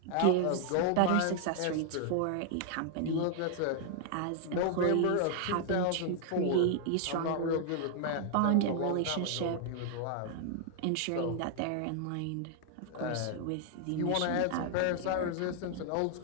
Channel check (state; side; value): different; both; correlation 0.00